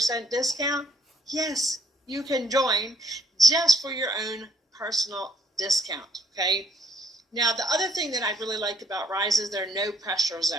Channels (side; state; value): both; normal; correlation 0.64